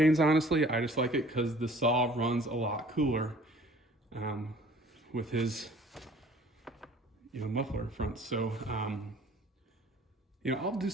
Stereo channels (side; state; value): both; normal; correlation 0.52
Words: honestly. I just like it because the saw runs a lot cooler with his, you know, muffler front. So, you know, I'll do